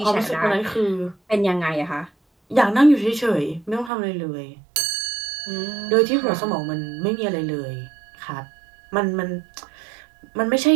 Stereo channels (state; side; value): drops out; left; at 3.9 s